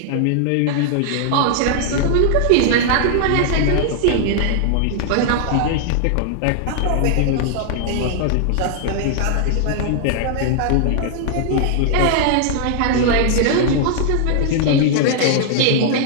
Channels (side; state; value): both; different; correlation -0.01